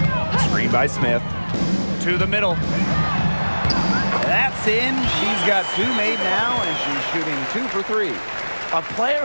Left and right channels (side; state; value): both; inverted; correlation -1.00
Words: Screen by Smith. To the middle. That's in. She's got 2 made now, and she's shooting 2 for 3. A player